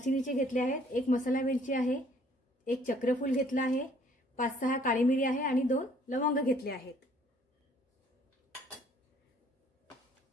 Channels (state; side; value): normal; both; correlation 0.60